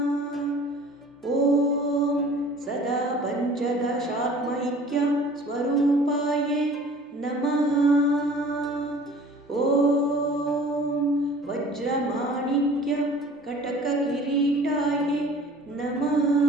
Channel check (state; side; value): normal; both; correlation 0.48